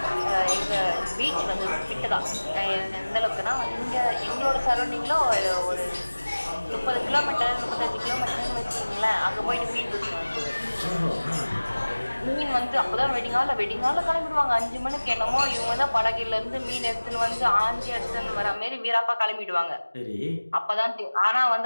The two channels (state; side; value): inverted; both; correlation -1.00